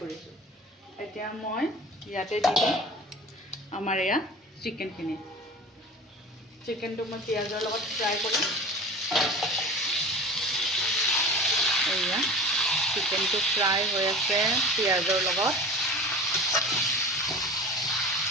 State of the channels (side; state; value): both; normal; correlation 0.36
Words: কৰিছোঁ। এতিয়া মই ইয়াতে দি দিম আমাৰ এয়া চিকেনখিনি। চিকেনটো মই পিঁয়াজৰ লগত ফ্ৰাই কৰিম। এয়া চিকেনটো ফ্ৰাই হৈ আছে পিঁয়াজৰ লগত।